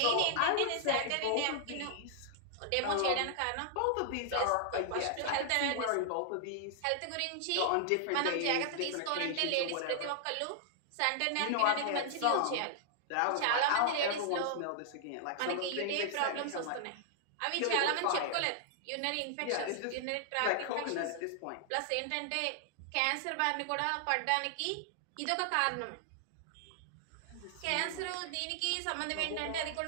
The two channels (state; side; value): different; both; correlation 0.00